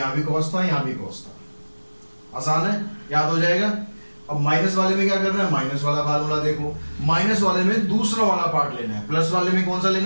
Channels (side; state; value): both; inverted; correlation -1.00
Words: भी cos था यहाँ भी cos था। आसान है, याद हो जाएगा। अब माइनस वाले में क्या करना है, माइनस वाला फार्मूला देखो। माइनस वाले में दूसरा वाला पार्ट लेना है, प्लस वाले में कौन सा